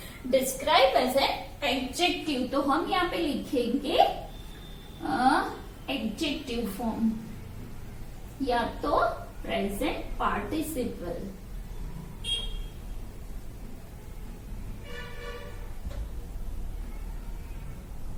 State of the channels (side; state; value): both; identical; correlation 1.00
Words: describe as an adjective. तो हम यहाँ पे लिखेंगे एडजेक्टिव फॉर्म या तो प्रेजेंट पार्टिसिपल।